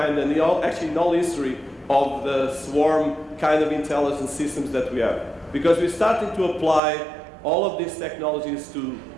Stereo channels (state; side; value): drops out; left; at 6.8 s